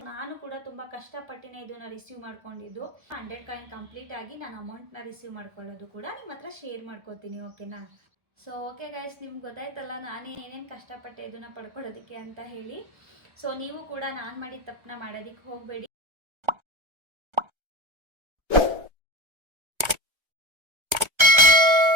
ನಾನು ಕೂಡ ತುಂಬ ಕಷ್ಟಪಟ್ಟಿನೇ ಇದನ್ನು ರಿಸೀವ್ ಮಾಡ್ಕೊಂಡಿದ್ದು. 100 ಕಾಯಿನ್ ಕಂಪ್ಲೀಟ್ ಆಗಿ ನಾನು ಅಮೌಂಟ್ನ ರಿಸೀವ್ ಮಾಡ್ಕೊಳ್ಳೋದು ಕೂಡ ನಿಮ್ಮ ಹತ್ರ ಶೇರ್ ಮಾಡ್ಕೋತೀನಿ, ಓಕೆನಾ? ಸೊ ಓಕೆ ಗೈಸ್, ನಿಮ್ಗೆ ಗೊತ್ತಾಯ್ತಲ್ಲ ನಾನು ಏನೇನು ಕಷ್ಟಪಟ್ಟೆ ಇದನ್ನು ಪಡ್ಕೊಳ್ಳೋದಕ್ಕೆ ಅಂತ ಹೇಳಿ. ಸೊ ನೀವು ಕೂಡ ನಾನು ಮಾಡಿದ ತಪ್ಪನ್ನ ಮಾಡೋದಕ್ಕೆ ಹೋಗಬೇಡಿ.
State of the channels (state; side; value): late; left; 1.3 ms